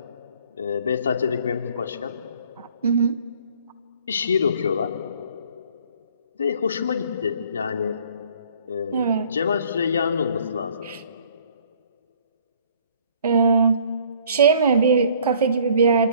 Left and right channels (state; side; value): inverted; both; correlation -0.57